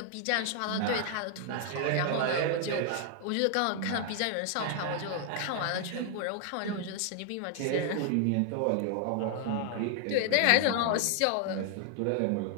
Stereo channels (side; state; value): both; different; correlation 0.00